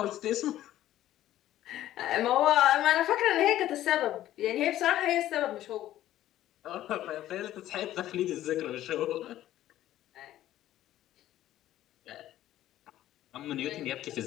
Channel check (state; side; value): quieter; right; 13.4 dB